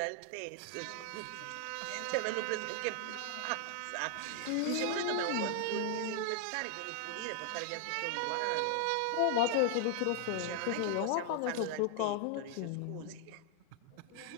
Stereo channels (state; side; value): different; both; correlation 0.00